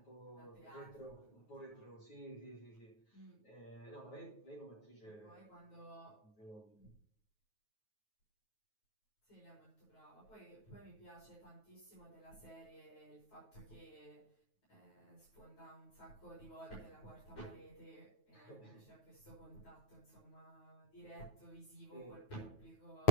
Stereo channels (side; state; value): right; late; 9.3 ms